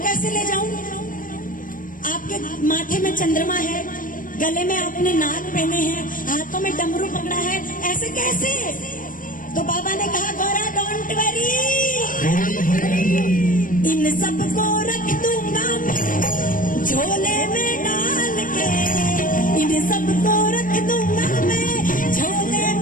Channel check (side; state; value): right; late; 0.39 ms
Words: ले जाऊं? आपके माथे में चंद्रमा है, गले में आपने नाग पहने हैं, हाथों में डमरू पकड़ा है, ऐसे कैसे? तो बाबा ने कहा गौरा डोंट वरी, इन सबको रख दूंगा मैं झोले में डाल के, इन सबको रख दूंगा मैं झोले